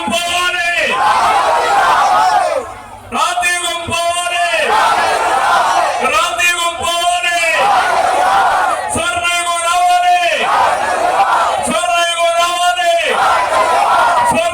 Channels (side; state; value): both; identical; correlation 1.00